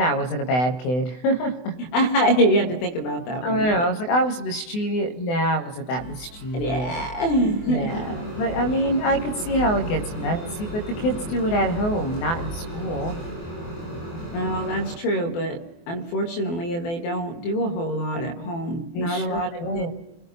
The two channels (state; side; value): late; right; 24 ms